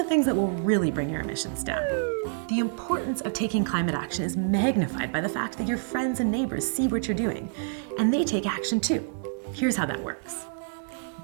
things that will really bring your emissions down. The importance of taking climate action is magnified by the fact that your friends and neighbors see what you're doing, and they take action too. Here's how that works.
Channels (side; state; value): left; silent; digital silence